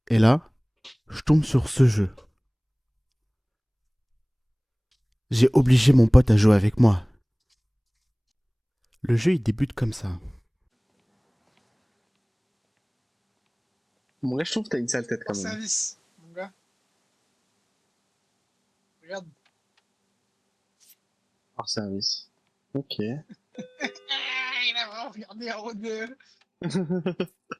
et là, je tombe sur ce jeu. J'ai obligé mon pote à jouer avec moi. Le jeu, il débute comme ça. Bon, là, je trouve que t'as une sale tête Hors quand même. service, mon gars. Regarde. Hors service. Ok. Il a vraiment regardé en haut.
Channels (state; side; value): identical; both; correlation 1.00